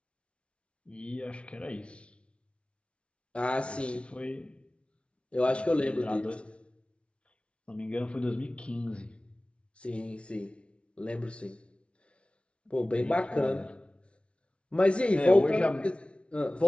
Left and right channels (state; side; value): late; right; 0.060 ms